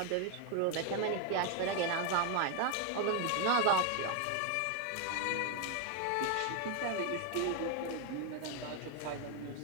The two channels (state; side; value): different; both; correlation 0.01